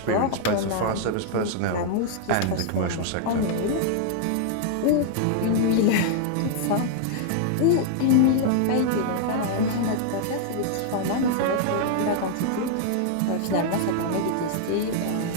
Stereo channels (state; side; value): different; both; correlation -0.01